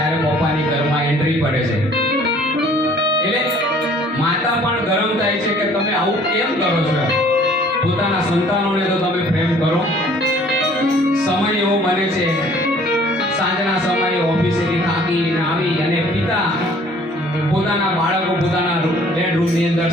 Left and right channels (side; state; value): both; normal; correlation 0.55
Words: પપ્પાની ઘરમાં એન્ટ્રી પડે છે. એટલે માતા પણ ગરમ થાય છે કે તમે આવું કેમ કરો છો. પોતાના સંતાનોને તો તમે પ્રેમ કરો. સમય એવો બને છે, સાંજના સમયે ઓફિસેથી થાકીને આવી અને પિતા પોતાના બાળકો પોતાના બેડરૂમની અંદર